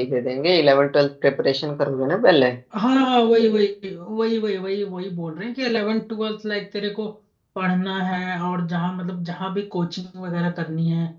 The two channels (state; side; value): identical; both; correlation 1.00